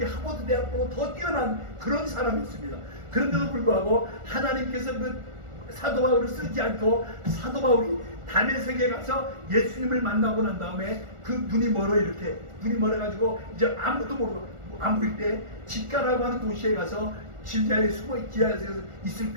하버드 대학보다 더 뛰어난 그런 사람이었습니다. 그런데도 불구하고 하나님께서 그 사도 바울을 쓰지 않고 사도 바울이 다메섹에 가서 예수님을 만나고 난 다음에 그 눈이 멀어가지고 이제 아무도 모르고 아무리 때 집가라고 하는 도시에 가서 지하에 있을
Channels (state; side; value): late; left; 1.4 ms